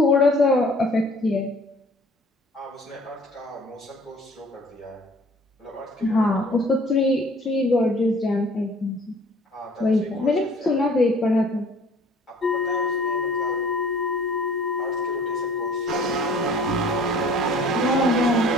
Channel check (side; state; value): both; normal; correlation 0.52